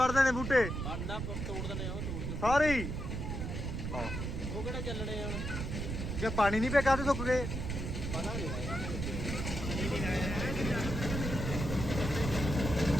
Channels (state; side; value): noise; right; rumble, 3 dB below the sound